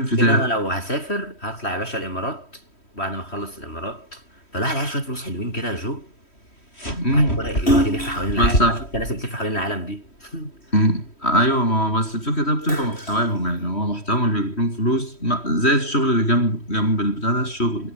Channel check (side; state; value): right; late; 3.1 ms